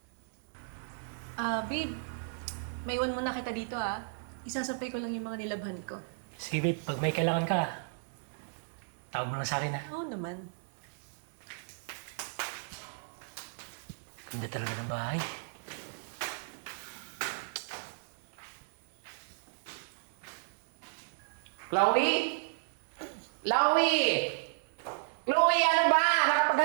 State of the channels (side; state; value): left; silent; digital silence